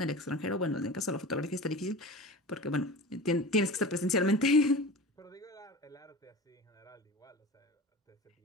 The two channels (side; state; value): both; normal; correlation 0.34